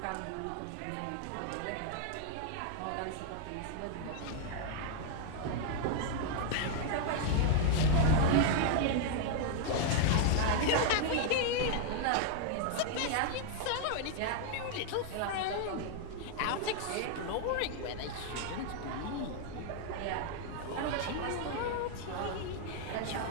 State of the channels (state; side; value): different; both; correlation 0.00